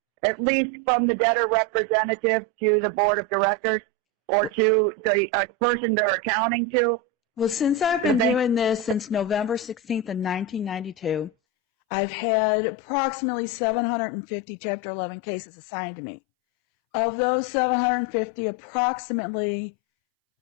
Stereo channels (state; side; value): drops out; right; at 11.3 s